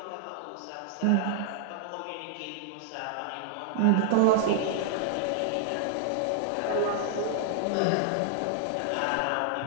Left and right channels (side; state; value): both; different; correlation -0.01